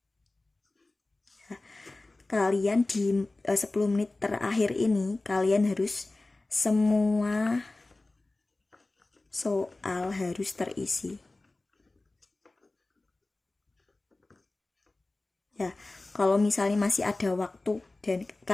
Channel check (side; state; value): right; quieter; 3.0 dB